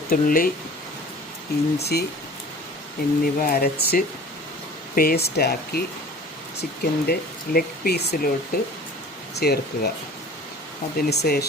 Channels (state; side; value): normal; both; correlation 0.43